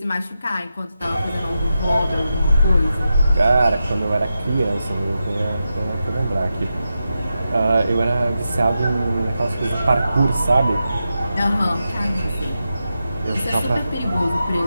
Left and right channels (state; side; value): inverted; both; correlation -0.89